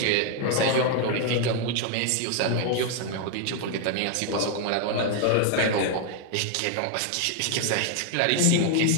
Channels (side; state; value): both; different; correlation 0.00